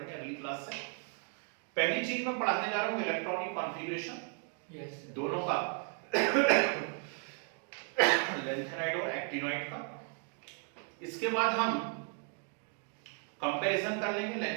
अगली क्लास से। पहली चीज मैं पढ़ाने जा रहा हूं इलेक्ट्रॉनिक कॉन्फ़िगरेशन, दोनों का लेंथेनाइट और एक्टिनोइड का। इसके बाद हम कंपैरिजन कर लेंगे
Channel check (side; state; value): left; quieter; 38.3 dB